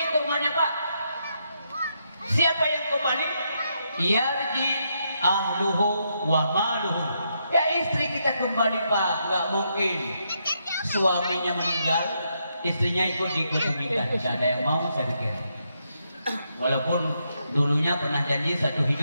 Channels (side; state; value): both; inverted; correlation -0.79